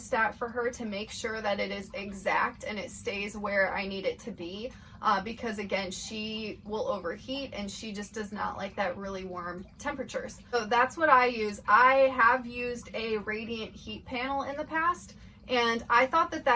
for her to make sure that it is exact and it stays where I need it to be, because again, she will overheat and she just does not like that really warm temperatures. So that's what I use. I have used a radiant heat panel in the past, and I thought that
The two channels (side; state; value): both; identical; correlation 1.00